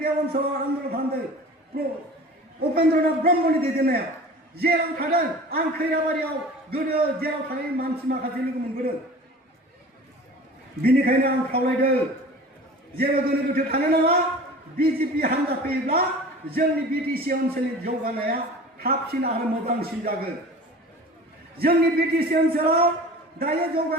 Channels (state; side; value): normal; both; correlation 0.40